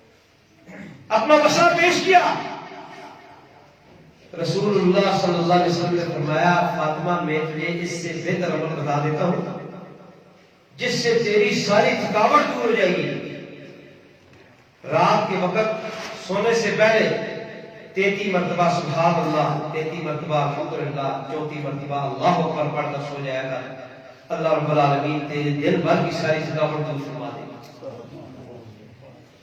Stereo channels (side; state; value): both; identical; correlation 1.00